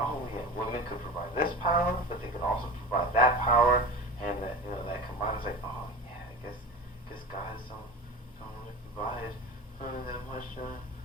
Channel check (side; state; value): both; normal; correlation 0.33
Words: women could provide this power, but they could also provide that power, and that that combined is like, oh yeah, I guess guys don't really provide that much